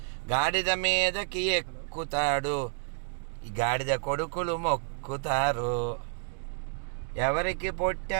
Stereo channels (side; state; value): left; silent; digital silence